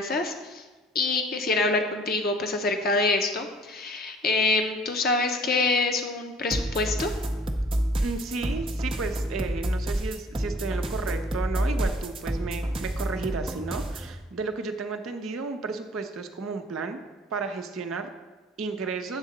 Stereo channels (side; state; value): both; normal; correlation 0.53